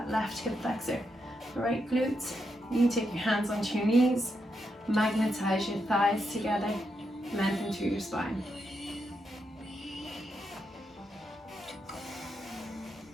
left hip flexor, right glutes, You can take your hands onto your knees, magnetize your thighs together, lengthen through your spine.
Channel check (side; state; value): both; normal; correlation 0.83